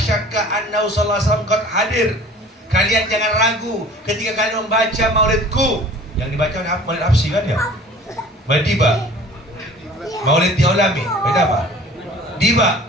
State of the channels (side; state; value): both; normal; correlation 0.46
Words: annahu sallallahu alaihi wasallam qad hadir. Kalian jangan ragu ketika kalian membaca maulidku. Yang dibaca oleh Maulid Habsyi kan ya? Madiba. Maulid Diolami. Beda apa? Diba.